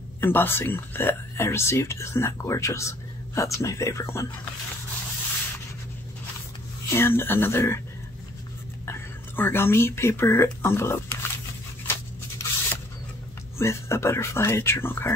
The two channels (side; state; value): both; normal; correlation 0.59